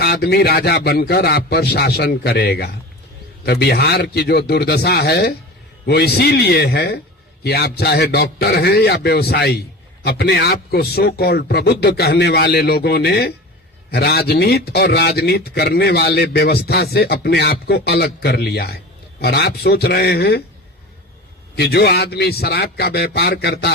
आदमी राजा बनकर आप पर शासन करेगा। तो बिहार की जो दुर्दशा है वो इसीलिए है कि आप चाहे डॉक्टर हैं या व्यवसायी, अपने आप को सो कॉल्ड प्रबुद्ध कहने वाले लोगों ने राजनीति और राजनीति करने वाले व्यवस्था से अपने आप को अलग कर लिया है। और आप सोच रहे हैं कि जो आदमी शराब का व्यापार करता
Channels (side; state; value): both; normal; correlation 0.34